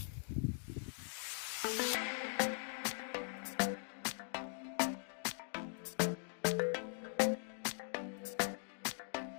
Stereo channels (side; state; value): right; silent; digital silence